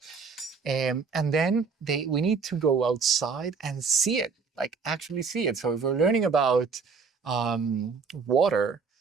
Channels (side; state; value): left; quieter; 5.2 dB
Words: And then we need to go outside and see it, like actually see it. So if we're learning about water,